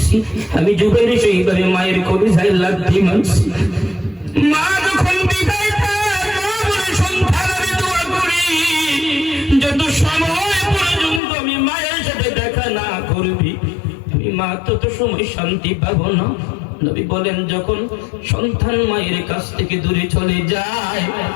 আমি জুবাইরি সেইভাবে মায়ের কলিজায় লাথি মারছি। মা যখন বিদায় পায়, মা বলে, সন্তান আমি দোয়া করি যত সময় পর্যন্ত আমি মায়ের সাথে দেখা না করবি, আমি মা তত সময় শান্তি পাবো না। নবী বলেন, যখন সন্তান মায়ের কাছ থেকে দূরে চলে যায়,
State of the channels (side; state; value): right; drops out; at 11.2 s